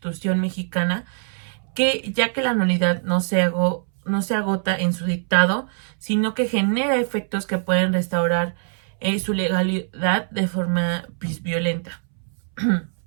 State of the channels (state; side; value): silent; left; 64 dB below the other